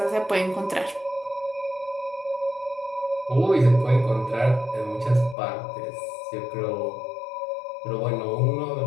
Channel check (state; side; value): drops out; right; at 5.4 s